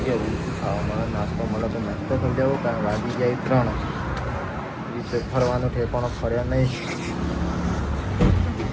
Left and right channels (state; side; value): identical; both; correlation 1.00